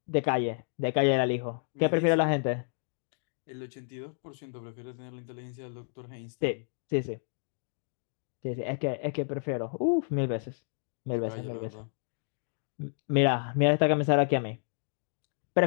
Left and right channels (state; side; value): silent; right; digital silence